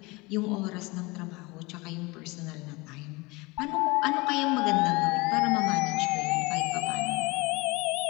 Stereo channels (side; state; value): right; quieter; 24.3 dB